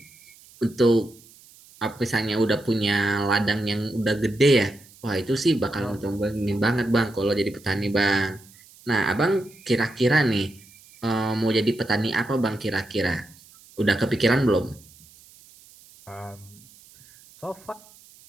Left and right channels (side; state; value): right; noise; hiss, 25 dB below the sound